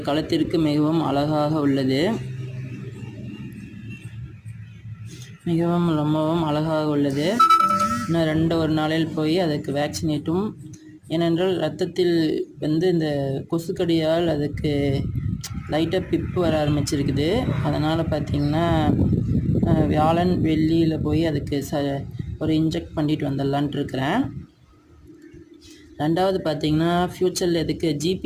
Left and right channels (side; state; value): both; identical; correlation 1.00